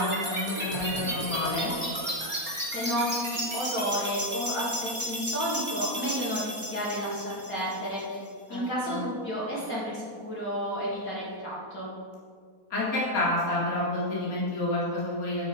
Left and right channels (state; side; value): late; left; 4.2 ms